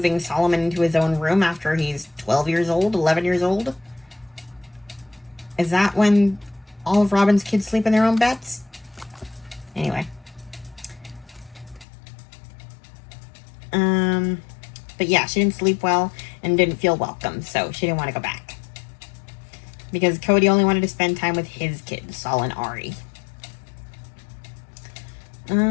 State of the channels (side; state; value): right; drops out; at 11.9 s